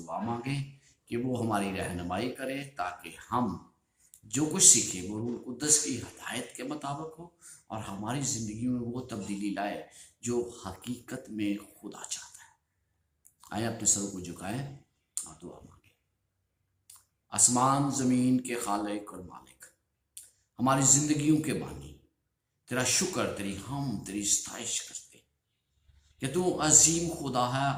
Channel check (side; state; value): both; identical; correlation 1.00